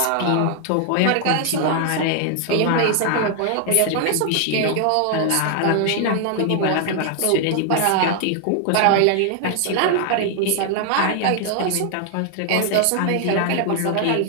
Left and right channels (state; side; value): different; both; correlation 0.00